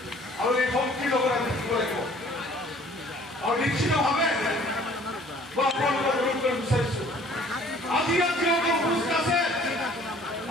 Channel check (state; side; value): normal; both; correlation 0.54